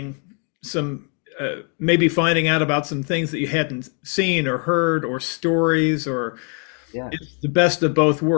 some maybe finding out about some things that you hadn't seen or heard or stories or yeah, it's the best of both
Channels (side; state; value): right; quieter; 39.1 dB